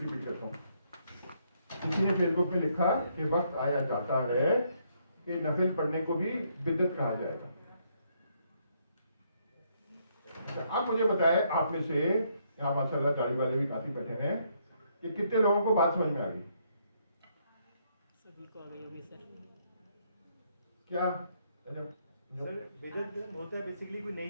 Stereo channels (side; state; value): both; inverted; correlation -0.72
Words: करता हूँ, किसी ने फेसबुक पे लिखा कि वक्त आया जाता है कि नफिल पढ़ने को भी बिदअत कहा जाएगा। अच्छा, आप मुझे बताएं, आप में से यहाँ माशाल्लाह दाढ़ी वाले भी काफी बैठे हैं, कि कितने लोगों को बात समझ में आ गई? सभी को आ गई होगी सर। क्या सर बिदअत होता है बेसिकली कोई